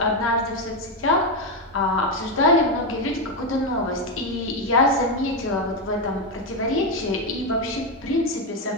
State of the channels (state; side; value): normal; both; correlation 0.08